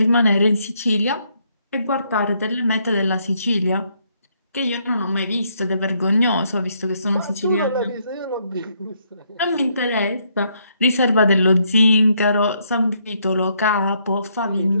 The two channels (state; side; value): inverted; both; correlation -0.73